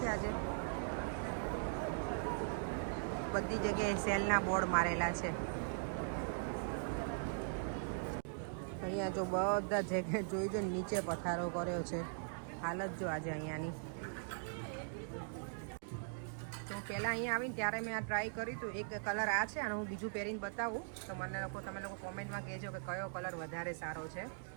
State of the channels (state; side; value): silent; left; digital silence